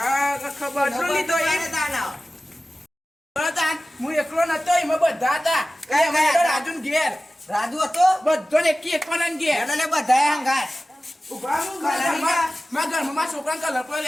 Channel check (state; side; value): normal; both; correlation 0.96